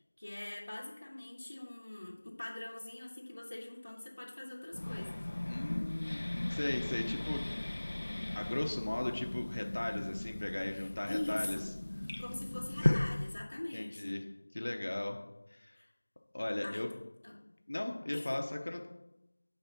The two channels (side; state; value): both; inverted; correlation -1.00